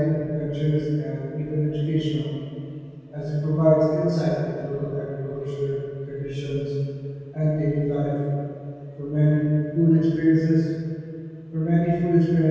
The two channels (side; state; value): both; identical; correlation 1.00